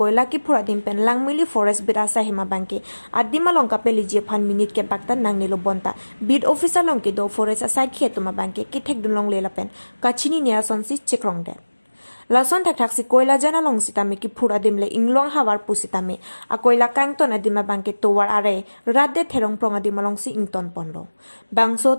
kephur adim pen langmili forest berasa hema bangke. Adima long kapeli je fan minute ke bakta nang nilo bonta. Bid officer long ke do forest aside khetuma bangke ki thek dun long lela pen. Kachini nia sonsi chekrong de. Lason tak tak si koila jana long sitame kephur adim le inglong hawar pusitame. A koila kangton adima bangke towar are radde therong prong adim long si ington ponlo. Bangso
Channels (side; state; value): both; inverted; correlation -1.00